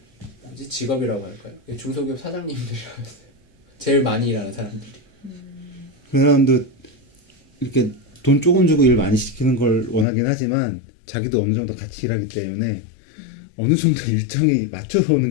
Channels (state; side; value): drops out; right; at 10.1 s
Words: 할까요? 중소기업 사장님들이라고 했어요. 제일 많이 일하는 사람들이. 그 사람도 이렇게 돈 조금 주고 일 많이 시키는 걸 원하긴 하지만 자기도 어느 정도 같이 일하기 때문에 어느 정도 일정이 맞춰서 오는